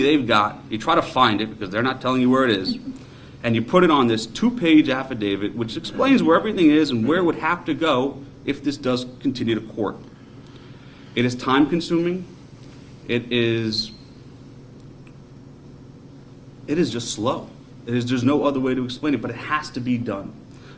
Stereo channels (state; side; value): identical; both; correlation 1.00